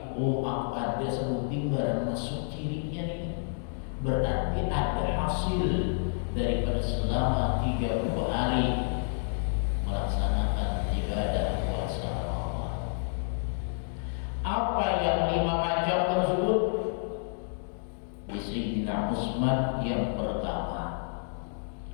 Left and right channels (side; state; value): right; silent; digital silence